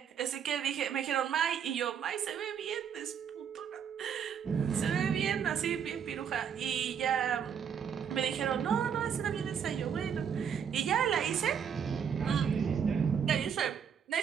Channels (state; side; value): quieter; left; 7.7 dB